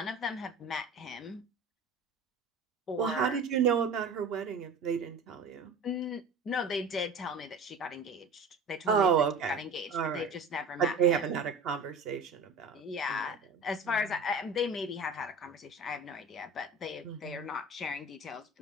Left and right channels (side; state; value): left; quieter; 3.2 dB